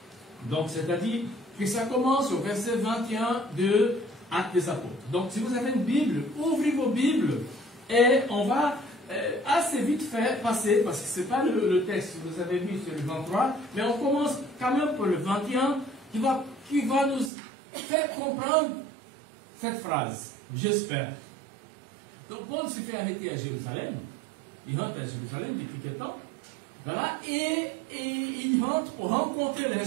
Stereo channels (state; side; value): drops out; left; at 17.3 s